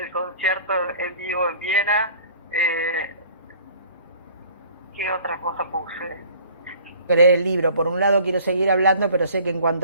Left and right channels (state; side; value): inverted; both; correlation -0.51